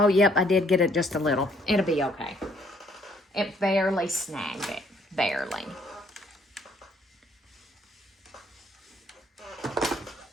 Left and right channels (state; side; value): normal; both; correlation 0.65